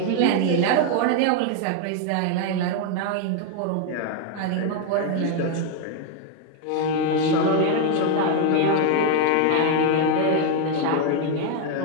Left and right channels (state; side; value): different; both; correlation 0.01